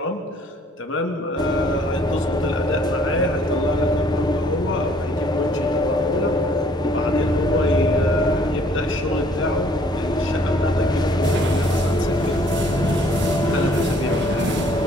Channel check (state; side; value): normal; both; correlation 0.60